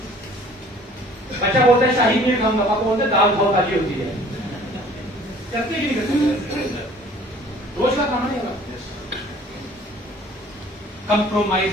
बच्चा बोलता है शाही पनीर खाऊंगा, पापा बोलते हैं दाल बहुत ताजी होती है। करते कि नहीं करते? रोज का खाना नहीं होगा। कंप्रोमाइज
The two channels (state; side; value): normal; both; correlation 0.52